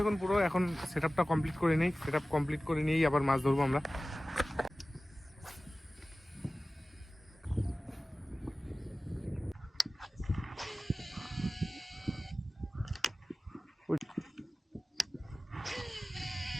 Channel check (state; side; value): normal; both; correlation 0.97